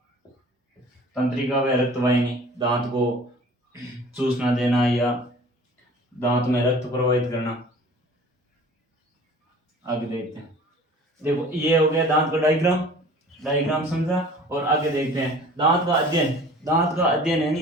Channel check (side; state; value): both; normal; correlation 0.46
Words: तंत्रिका व रक्तवाहिनी दांत को चूसना देना या दांत में रक्त प्रवाहित करना। आगे देखते हैं, देखो ये हो गया दांत का डायग्राम। डायग्राम समझा। और आगे देखते हैं दांत का अध्ययन। दांत का अध्ययन